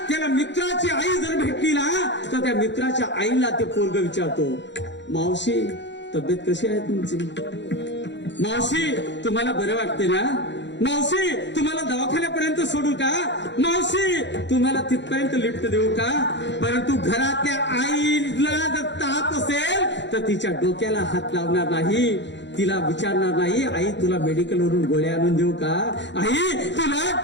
त्याला मित्राची आई जर भेटली ना तर त्या मित्राच्या आईला ते पोरग विचारतो, मावशी तब्येत कशी आहे तुमची? मावशी तुम्हाला बरं वाटते ना? मावशी तुम्हाला दवाखान्यापर्यंत सोडू का? मावशी तुम्हाला तिथपर्यंत लिफ्ट देऊ का? परंतु घरातल्या आईला जर ताप असेल तर तिच्या डोक्याला हात लावणार नाही, तिला विचारणार नाही आई तुला मेडिकल वरून गोळ्या आणून देऊ का, आई तुला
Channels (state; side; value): late; right; 0.52 ms